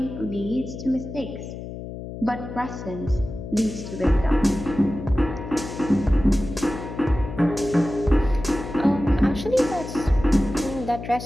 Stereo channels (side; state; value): left; noise; hum, 10 dB below the sound